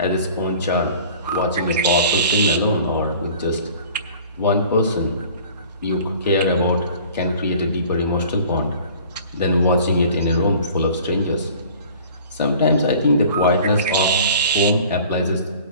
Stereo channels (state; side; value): inverted; both; correlation -0.47